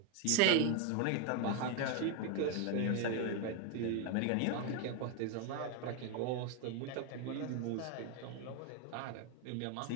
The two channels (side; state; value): both; different; correlation 0.01